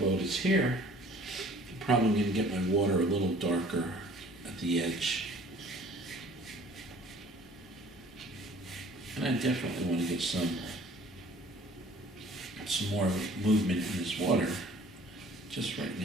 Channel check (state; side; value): normal; both; correlation 0.52